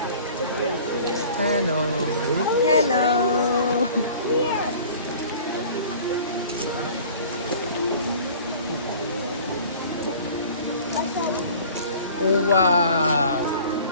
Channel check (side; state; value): both; inverted; correlation -0.46